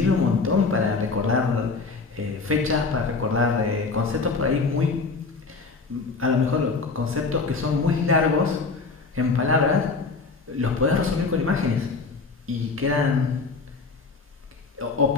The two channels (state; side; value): quieter; right; 4.3 dB